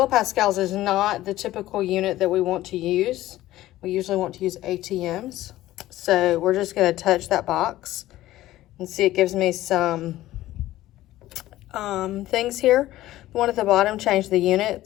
is not the typical unit that we want to use. We usually want to use ATMs. So we're just going to touch that box and see it gives me some things here. The one at the bottom, change the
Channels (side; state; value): right; quieter; 15.4 dB